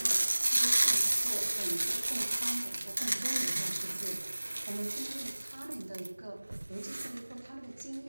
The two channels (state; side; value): inverted; both; correlation -1.00